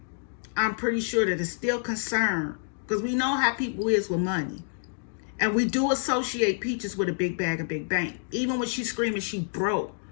I'm pretty sure that is still concerned, because we know how people is with money. And we do associate Peaches with a big bag, a big bank. Even when she's screaming she broke,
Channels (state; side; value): silent; right; digital silence